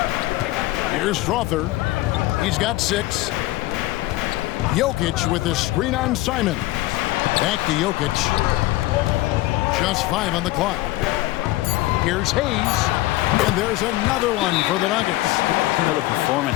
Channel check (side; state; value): right; quieter; 18.0 dB